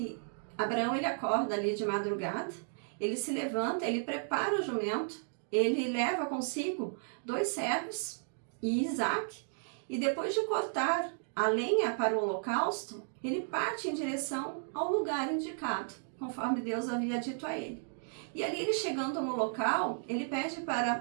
Abraão, ele acorda ali de madrugada, ele se levanta, ele prepara o jumento, ele leva consigo 2 servos e Isaque, e depois de cortar a lenha para o holocausto, ele parte em direção ao lugar indicado, conforme Deus havia dito a ele. E ali, ele chegando no local, ele pede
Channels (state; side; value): silent; left; digital silence